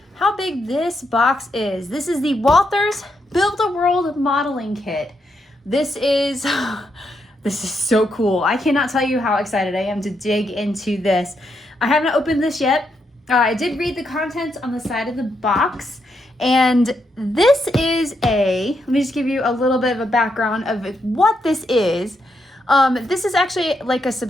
how big this box is. This is the Walthers Build-A-World modeling kit. This is so cool. I cannot tell you how excited I am to dig into this. I haven't opened this yet. I did read the contents on the side of the box, and this is let me just give you a little bit of a background of what this is. This is actually like a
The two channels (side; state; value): both; normal; correlation 0.80